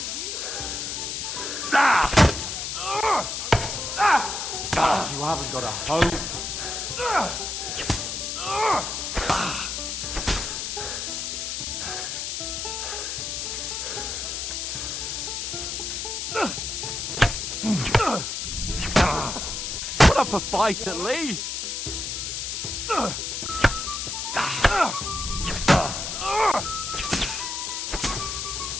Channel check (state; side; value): noise; left; hiss, 3 dB below the sound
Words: You haven't got a hope. Put up a fight at least.